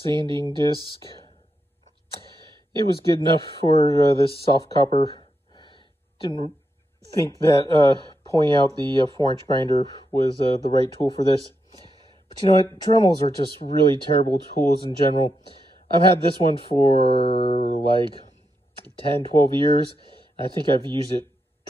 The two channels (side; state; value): both; normal; correlation 0.84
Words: disc. It was good enough for this soft copper. didn't think that pulling out the 4-inch grinder was the right tool for this. But you know what? Dremels are just really terrible tools in general. I've had this one for like 10, 12 years. I think I've used it